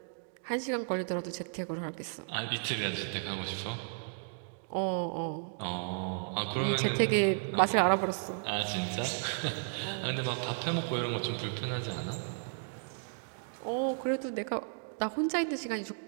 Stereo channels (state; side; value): silent; left; digital silence